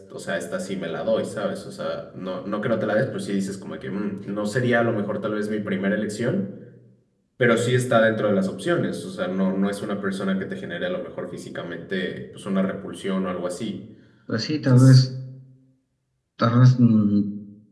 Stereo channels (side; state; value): both; identical; correlation 1.00